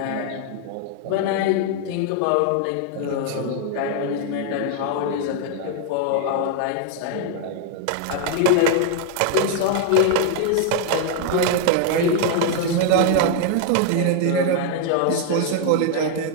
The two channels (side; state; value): both; different; correlation 0.00